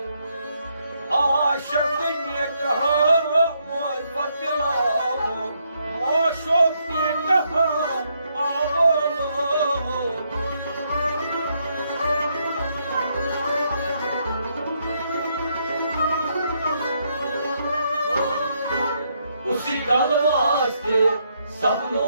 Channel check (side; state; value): both; inverted; correlation -0.75